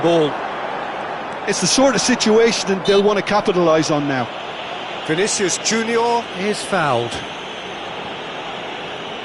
It's the sort of situation that they'll want to capitalise on now. Vinicius Junior is fouled.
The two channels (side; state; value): both; identical; correlation 1.00